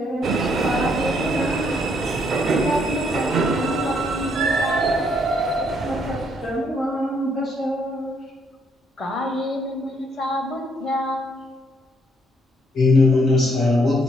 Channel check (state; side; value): normal; both; correlation 0.71